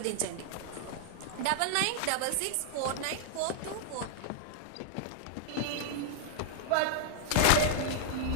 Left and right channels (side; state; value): both; different; correlation -0.01